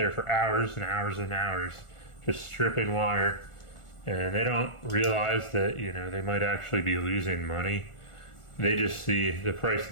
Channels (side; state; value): right; late; 1.4 ms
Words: for hours and hours and hours just stripping wire, and they don't realize that, they might actually be losing money. They just see the price